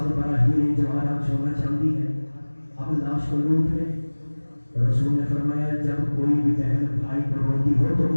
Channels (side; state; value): both; inverted; correlation -1.00